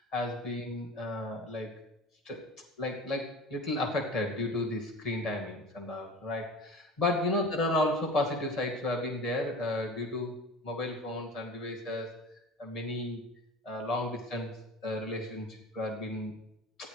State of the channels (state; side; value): normal; both; correlation 0.36